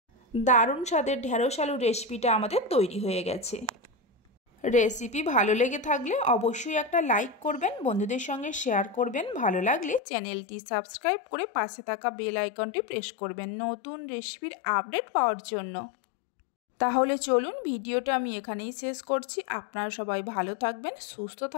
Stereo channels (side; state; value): right; drops out; at 10.0 s